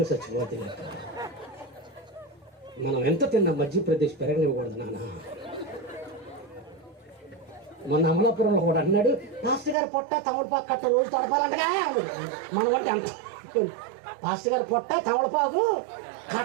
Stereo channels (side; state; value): left; drops out; at 9.8 s